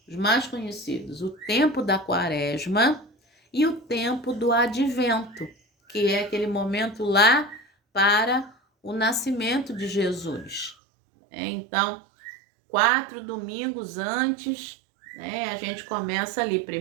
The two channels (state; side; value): drops out; left; at 10.8 s